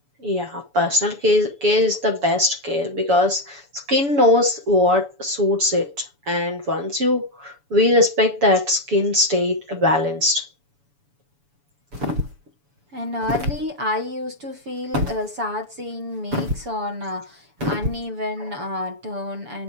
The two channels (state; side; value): late; left; 7.0 ms